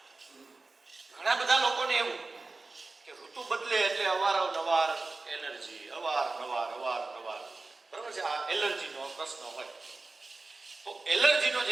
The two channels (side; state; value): left; quieter; 3.5 dB